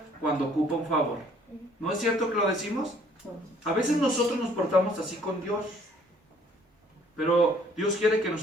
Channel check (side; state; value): both; normal; correlation 0.60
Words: cuando ocupa un favor. ¿No es cierto que lo decimos? A veces nosotros nos portamos así con Dios, pero Dios quiere que